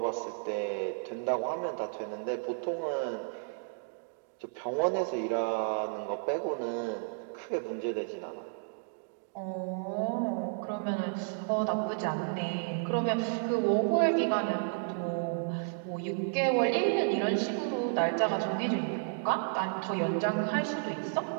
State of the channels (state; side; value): silent; left; digital silence